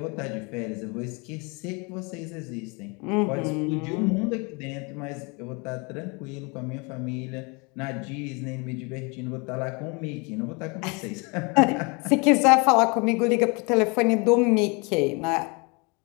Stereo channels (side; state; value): right; quieter; 30.3 dB